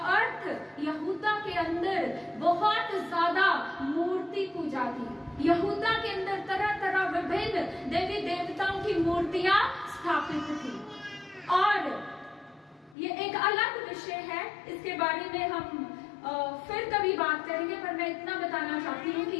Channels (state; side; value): drops out; right; at 13.0 s